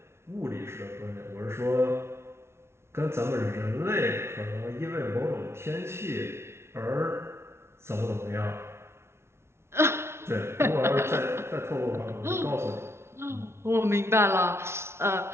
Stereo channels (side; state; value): left; late; 0.12 ms